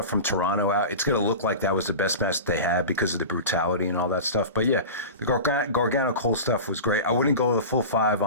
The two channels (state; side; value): inverted; both; correlation -0.30